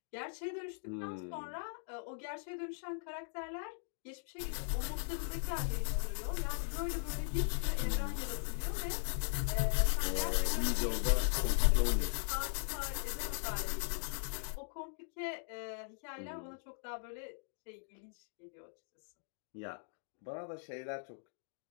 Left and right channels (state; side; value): silent; right; digital silence